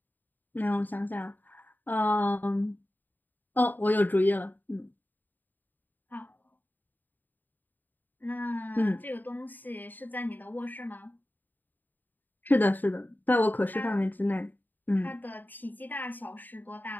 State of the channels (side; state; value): right; late; 0.088 ms